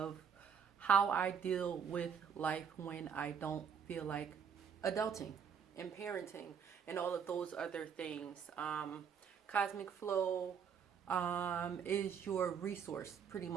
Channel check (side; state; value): left; quieter; 7.2 dB